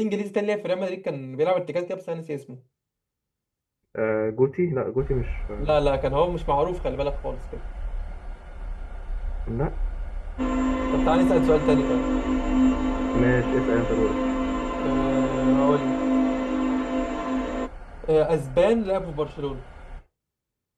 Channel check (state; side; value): identical; both; correlation 1.00